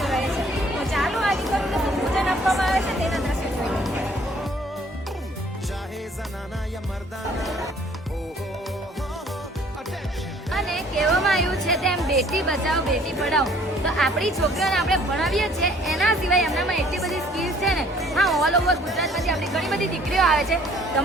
રહે છે. તો ચાલો આ દીકરીઓને પૂજન આપવામાં આવે છે તેના દ્રશ્ય જોઈએ. અને કહેવામાં આવ્યું છે તેમ બેટી બચાવો બેટી પઢાઓ. તો આપણી છોકરીઓને આપણે ભણાવીએ છીએ એના સિવાય એમનામાં એટલી બધી સ્કિલ્સ છે ને. હા, ઓલ ઓવર ગુજરાતમાંથી આપણી ઘણી બધી દીકરીઓ આવે છે.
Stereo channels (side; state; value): both; normal; correlation 0.57